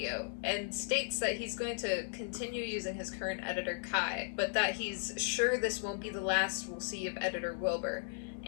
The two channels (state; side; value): silent; right; digital silence